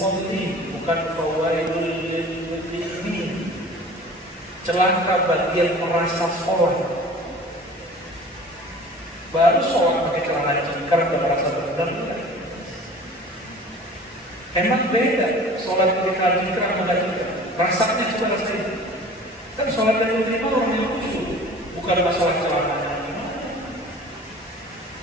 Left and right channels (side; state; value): both; normal; correlation 0.43